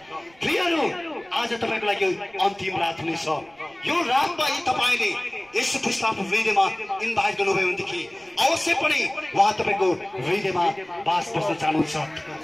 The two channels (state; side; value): noise; right; rumble, 30 dB below the sound